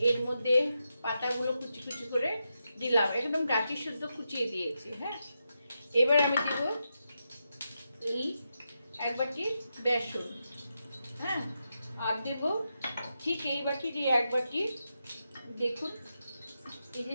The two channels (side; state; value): both; inverted; correlation -0.86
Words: এর মধ্যে পাতাগুলো কুচি কুচি করে দিলাম, একদম ডাঁটি শুদ্ধ কুচিয়ে দিয়েছি। এবার আমি দেব এই 1 বাটি বেসন, আর দেব ঠিক এই বাটির 1 বাটি, দেখুন এই